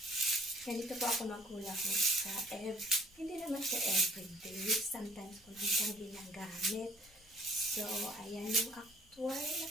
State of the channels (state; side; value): normal; both; correlation 0.57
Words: Ganito po ako maghula hoop sa hindi naman siya everyday. Sometimes ko lang siyang ginagamit. So, ayan yung actual na